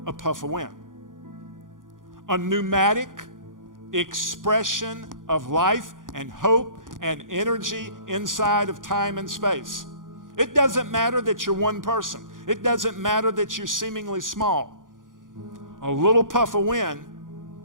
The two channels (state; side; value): late; left; 0.89 ms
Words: a puff of wind. A pneumatic expression of life and hope and energy inside of time and space. It doesn't matter that you're one person. It doesn't matter that you're seemingly small. A little puff of wind